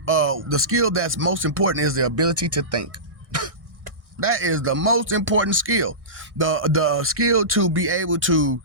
The skill that's most important is the ability to think. That is the most important skill. The skill to be able to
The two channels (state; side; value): late; left; 1.6 ms